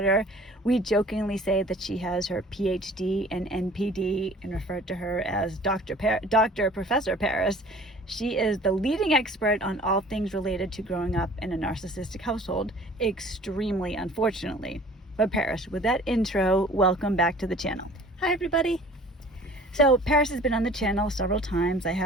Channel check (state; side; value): normal; both; correlation 0.48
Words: We jokingly say that she has her PhD and NPD and refer to her as Professor Paris. She is the leading expert on all things related to growing up in a narcissistic household, extremely unfortunately. But Paris, with that intro, welcome back to the channel. Hi everybody. So Paris has been on the channel several times. I